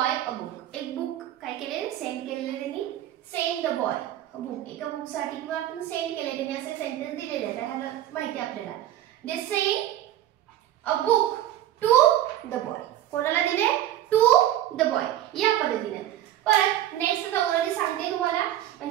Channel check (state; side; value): quieter; left; 12.7 dB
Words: a book. एक बुक काय केले, सेंड केलेले त्यांनी. send the boy a book. एका बुक साठी किंवा आपण सेंड केले, त्यांनी असे सेंटेन्स दिलेले आहेत, ह्याला माहिती आपल्याला. they send a book to the boy. कोणाला दिले, टू द बॉय या पद्धतीने. परत नेक्स्ट आता ऑलरेडी सांगते तुम्हाला,